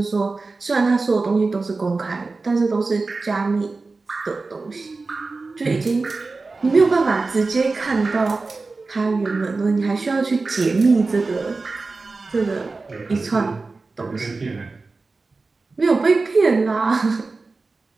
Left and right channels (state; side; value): quieter; left; 3.8 dB